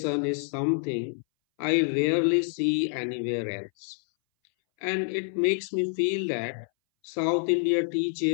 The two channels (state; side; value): silent; right; 60 dB below the other